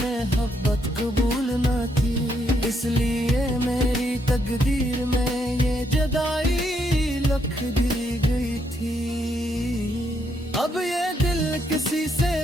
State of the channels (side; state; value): both; normal; correlation 0.76